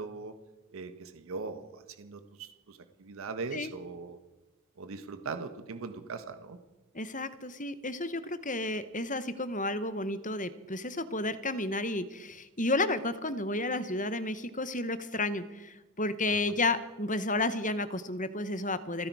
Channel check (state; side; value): normal; both; correlation 0.18